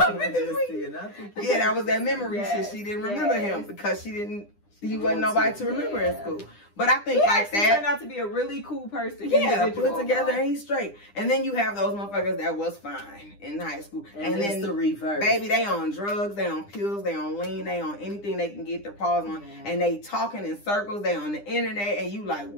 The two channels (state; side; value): late; right; 9.9 ms